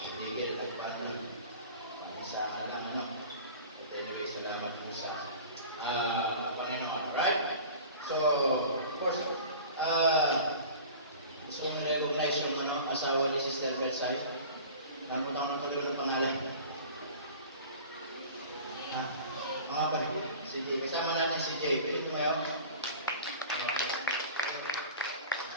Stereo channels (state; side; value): inverted; both; correlation -0.40